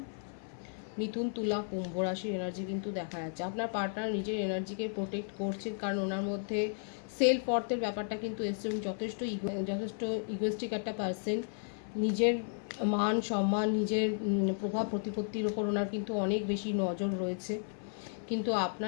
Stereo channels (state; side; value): silent; right; 55 dB below the other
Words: মিথুন, তুলা, কুম্ভ রাশির এনার্জি কিন্তু দেখা যাচ্ছে। আপনার পার্টনার নিজের এনার্জিকে প্রোটেক্ট করছেন কারণ ওনার মধ্যে সেলফ অর্থের ব্যাপারটা কিন্তু এসছে। যথেষ্ট ইগোয়েস্টিক একটা পার্সন, নিজের মান সম্মান, নিজের প্রভাব প্রতিপত্তির ওপর ওনার কিন্তু অনেক বেশি নজর রয়েছে। কিন্তু